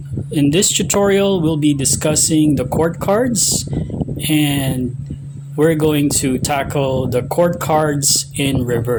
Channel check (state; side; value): identical; both; correlation 1.00